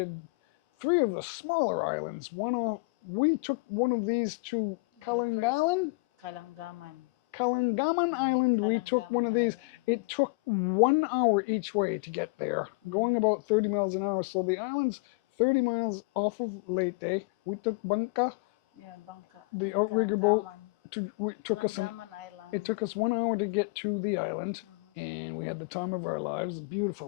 3 of the smaller islands. We took one of these to Kalangalan. Kalangaman Island, we took one of these. Island. It took 1 hour each way to get there, going about 30 miles an hour. So the island's 30 miles off of Leyte. We took Bangka, Yeah, Bangka. the outrigger boat. Island. It took us 1 hour to get to the island, and we had the time of our lives. A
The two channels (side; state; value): right; quieter; 29.6 dB